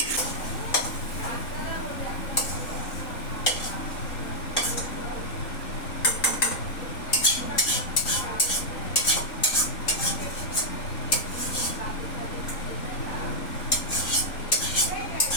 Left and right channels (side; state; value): right; late; 3.8 ms